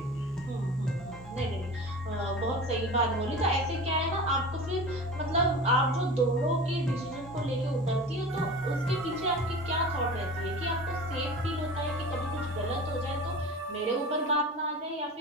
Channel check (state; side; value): normal; both; correlation 0.35